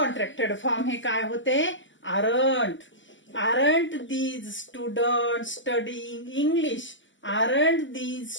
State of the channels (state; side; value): late; right; 0.55 ms